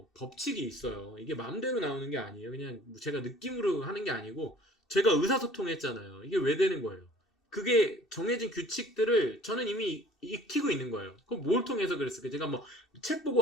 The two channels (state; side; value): normal; both; correlation 0.51